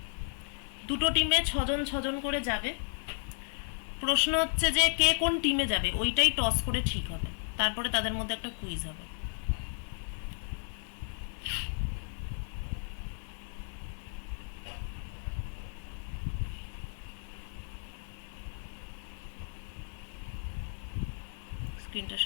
দুটো টিমে 6 জন 6 জন করে যাবে। প্রশ্ন হচ্ছে যে কে কোন টিমে যাবে ওইটাই টস করে ঠিক হবে, তারপরে তাদের মধ্যে একটা কুইজ হবে। স্ক্রিনটা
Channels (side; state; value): right; silent; 55 dB below the other